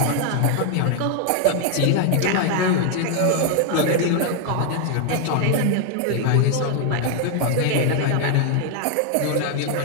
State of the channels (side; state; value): both; different; correlation 0.00